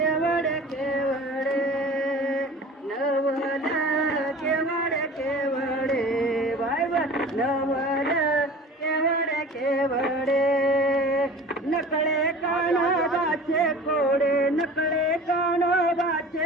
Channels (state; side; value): normal; both; correlation 0.41